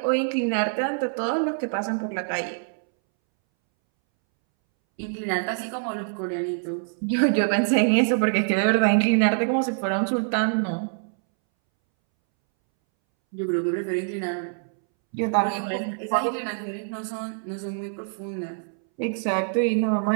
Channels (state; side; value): silent; left; 62 dB below the other